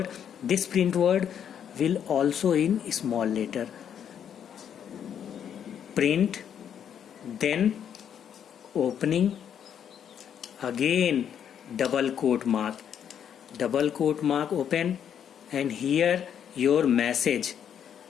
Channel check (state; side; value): quieter; right; 8.7 dB